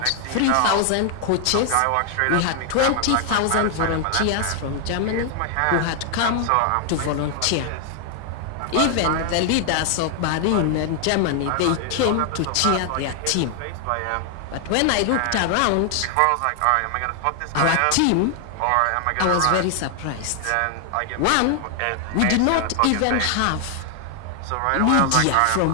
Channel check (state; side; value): different; both; correlation 0.00